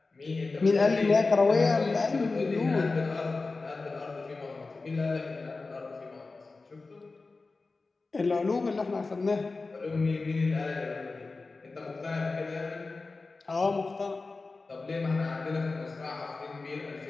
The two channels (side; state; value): right; quieter; 3.8 dB